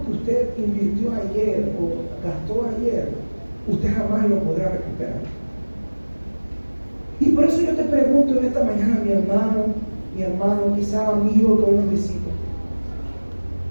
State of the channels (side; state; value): both; inverted; correlation -1.00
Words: que usted invirtió ayer o gastó ayer, usted jamás lo podrá recuperar. Y por eso yo te pregunto en esta mañana, mi hermano, quizá amigo que hoy nos visita,